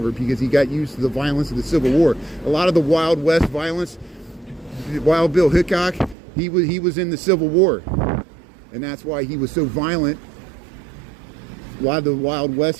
because he got used to the violence of the Civil War. A lot of the Wild West violence, Wild Bill Hickok, he was in the Civil War, and that's why he was so violent. A lot of the Wild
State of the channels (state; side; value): drops out; left; at 6.2 s